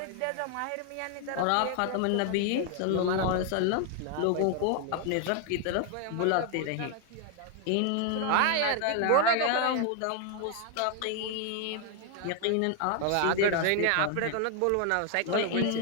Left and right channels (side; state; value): both; different; correlation 0.00